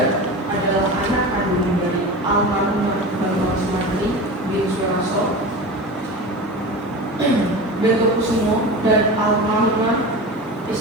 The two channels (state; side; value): normal; both; correlation 0.29